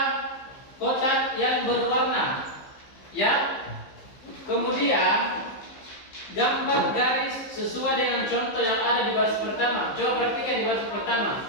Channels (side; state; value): right; late; 15 ms